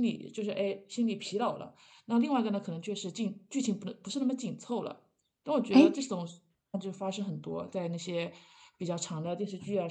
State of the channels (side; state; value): both; identical; correlation 1.00